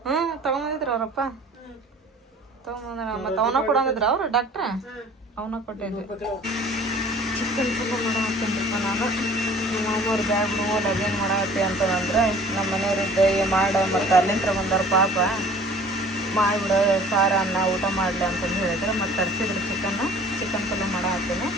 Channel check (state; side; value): normal; both; correlation 0.49